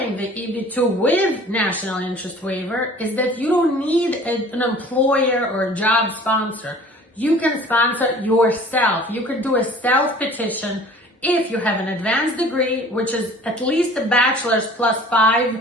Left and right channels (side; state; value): both; normal; correlation 0.48